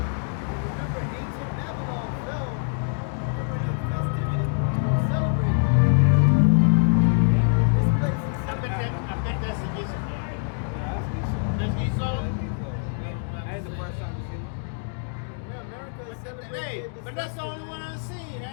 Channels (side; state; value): right; silent; 62 dB below the other